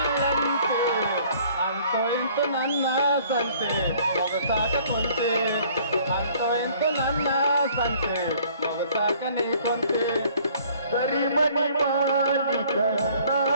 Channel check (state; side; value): inverted; both; correlation -0.56